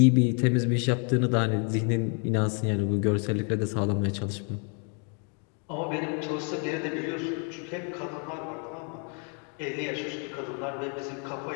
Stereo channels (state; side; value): quieter; right; 39.4 dB